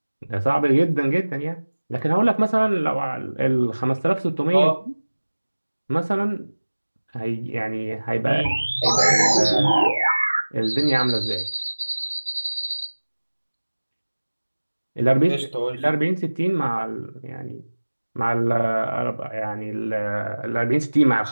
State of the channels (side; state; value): both; inverted; correlation -1.00